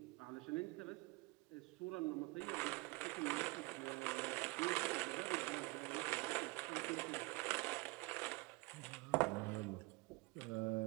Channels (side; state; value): left; quieter; 24.7 dB